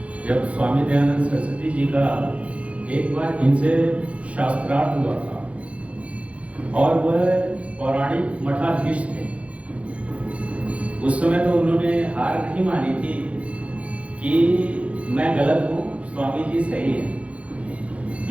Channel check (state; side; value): late; left; 0.063 ms